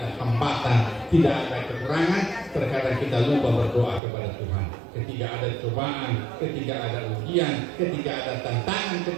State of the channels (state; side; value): drops out; left; at 4.0 s